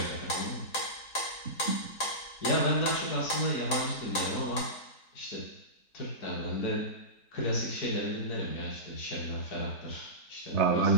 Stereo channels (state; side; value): late; right; 4.1 ms